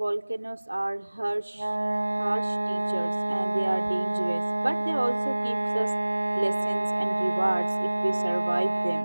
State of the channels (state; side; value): inverted; both; correlation -1.00